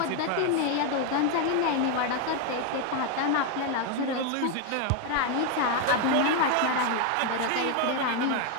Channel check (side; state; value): both; different; correlation 0.01